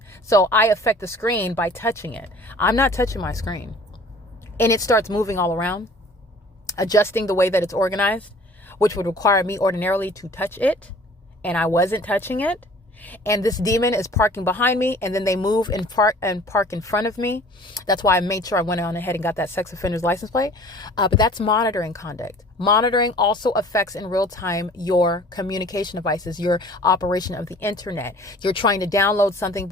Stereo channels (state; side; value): normal; both; correlation 0.49